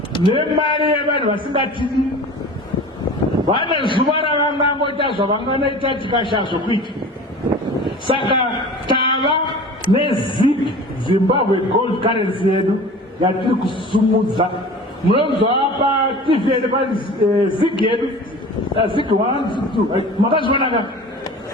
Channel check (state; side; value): normal; both; correlation 0.39